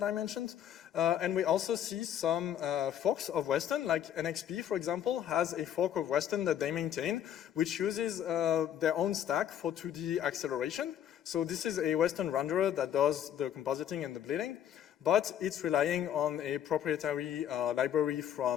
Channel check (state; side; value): quieter; right; 10.0 dB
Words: I mentioned, and we also see some forks of Western, like NXP, for example, has a fork of Western that they maintain, which uses their own stack for 2D acceleration. So this is a Western renderer that does the compositing and the bleeding, but it's relying on a proprietary library